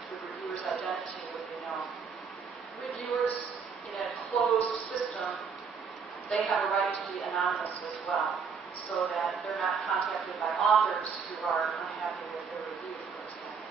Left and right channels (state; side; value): quieter; left; 5.9 dB